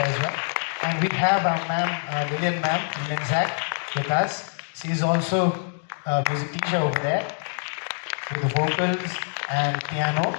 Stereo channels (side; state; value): right; silent; 62 dB below the other